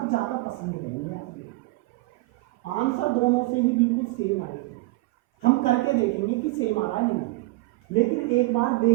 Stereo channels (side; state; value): left; quieter; 21.1 dB